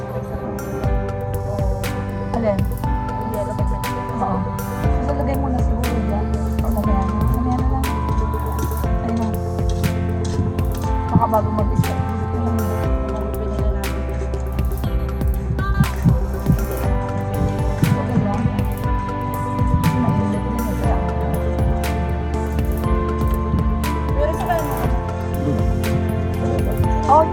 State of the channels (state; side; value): identical; both; correlation 1.00